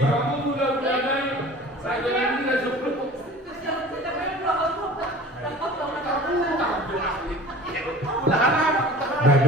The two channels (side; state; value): both; normal; correlation 0.42